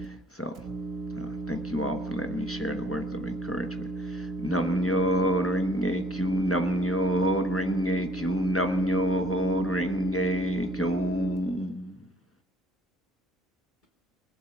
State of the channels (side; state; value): both; normal; correlation 0.59